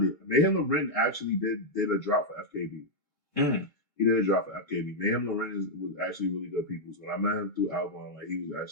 it. Mayhem Loren actually did a drop for FKB. He did a drop for FKB. Mayhem Loren was actually really good people. So when I met him through Album, like he was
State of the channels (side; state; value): right; late; 2.2 ms